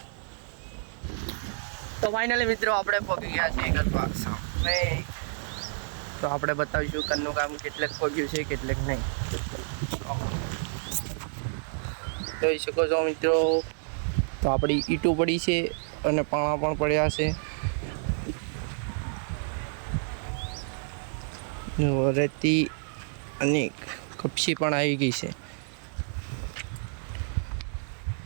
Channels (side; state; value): left; silent; digital silence